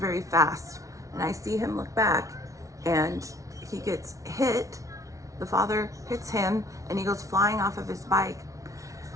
fast. And I see him look back, and he gets hit. The father hits him, and he goes flying off of his bike.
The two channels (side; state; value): left; late; 0.16 ms